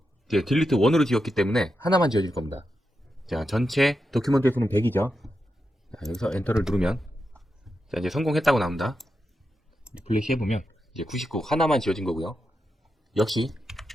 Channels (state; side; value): normal; both; correlation 0.88